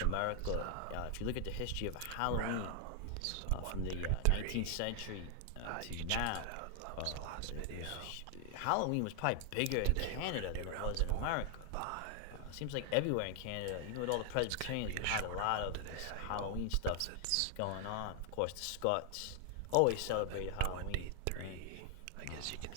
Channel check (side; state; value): both; different; correlation 0.00